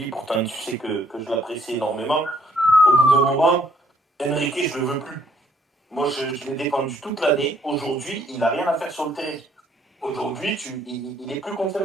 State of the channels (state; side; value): normal; both; correlation 0.65